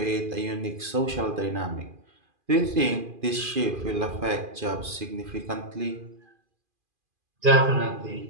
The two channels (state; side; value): late; left; 2.4 ms